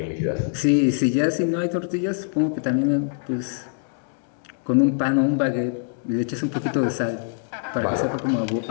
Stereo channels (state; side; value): silent; right; digital silence